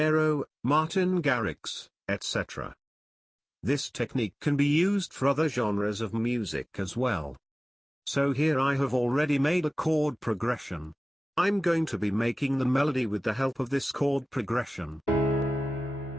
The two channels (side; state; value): both; normal; correlation 0.97